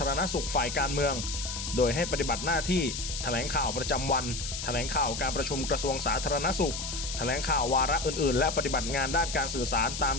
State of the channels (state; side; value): noise; left; hiss, 6 dB below the sound